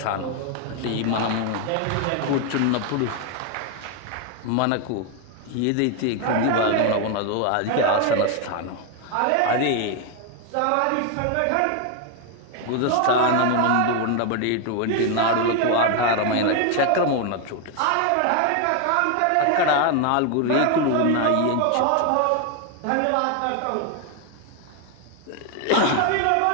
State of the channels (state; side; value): different; both; correlation 0.01